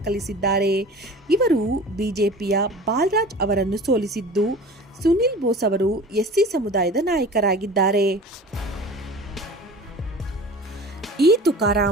ಇವರು ಬಿಜೆಪಿಯ ಬಾಲರಾಜ್ ಅವರನ್ನು ಸೋಲಿಸಿದ್ದು, ಸುನಿಲ್ ಬೋಸ್ ಅವರು ಎಸ್ಸಿ ಸಮುದಾಯದ ನಾಯಕರಾಗಿದ್ದಾರೆ. ಇ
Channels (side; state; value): both; normal; correlation 0.39